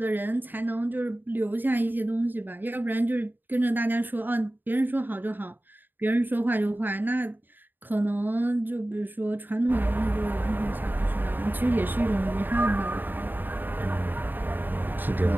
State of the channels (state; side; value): late; left; 0.091 ms